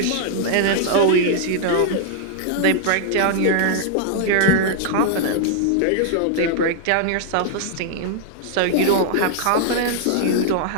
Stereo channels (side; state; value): both; different; correlation -0.01